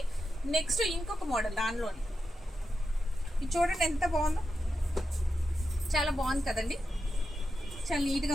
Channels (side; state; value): both; normal; correlation 0.89